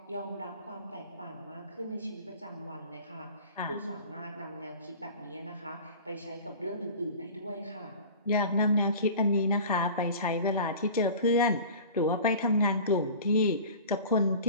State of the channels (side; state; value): both; inverted; correlation -0.40